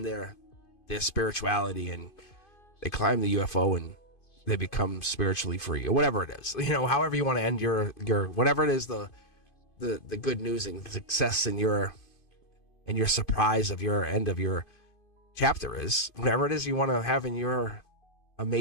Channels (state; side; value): late; right; 2.5 ms